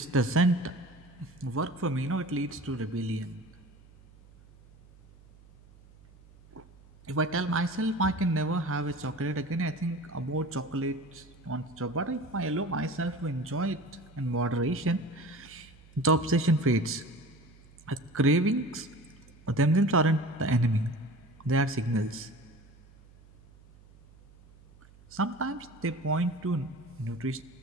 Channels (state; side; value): noise; right; hum, 25 dB below the sound